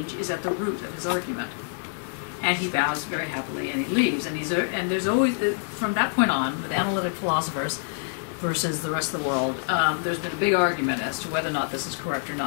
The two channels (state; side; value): silent; right; 61 dB below the other